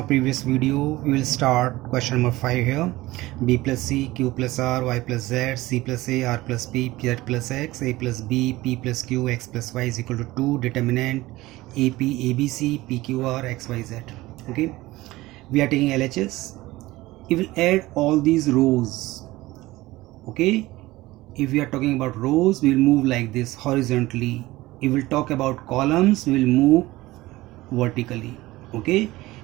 previous video, we will start question number 5 here. B plus C, Q plus R, Y plus Z, C plus A, R plus P, Z plus X, A plus B, P plus Q, X plus Y is equal to 2. Determinant AP, ABC, PQR, XYZ. Okay, we are taking LHS. We will add all these rows. Okay, if we are talking about rows, we will move like this horizontally. If we will talk about columns, we will move vertically. Okay,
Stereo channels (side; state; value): left; quieter; 18.6 dB